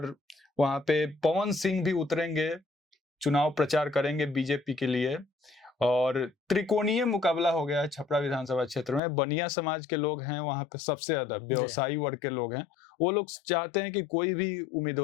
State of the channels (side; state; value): right; drops out; at 9.0 s